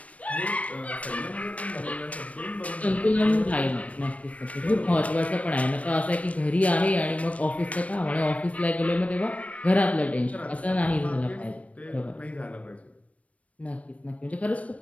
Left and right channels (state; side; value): late; right; 0.066 ms